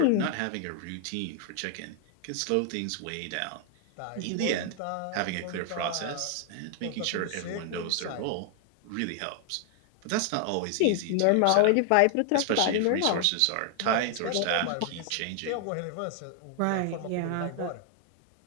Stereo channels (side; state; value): both; different; correlation 0.00